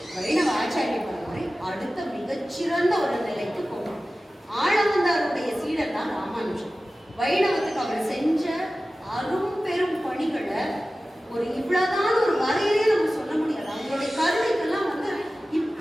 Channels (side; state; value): both; normal; correlation 0.96